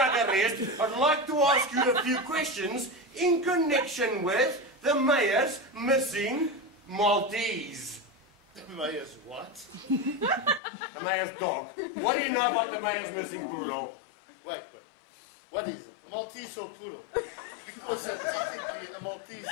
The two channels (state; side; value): drops out; right; at 10.6 s